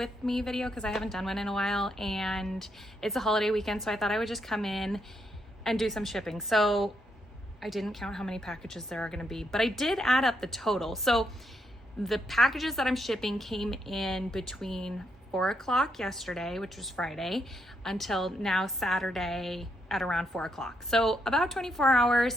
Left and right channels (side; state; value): both; normal; correlation 0.78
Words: me video because I haven't done one in a while and it's a holiday weekend, so I thought I would just come in and do some shipping. So I didn't count how many packages there are gonna be, but I did add up the total. So the packages that I'm shipping came in between 4 o'clock yesterday, which was Friday, until now Saturday at around 4 o'clock. So about 24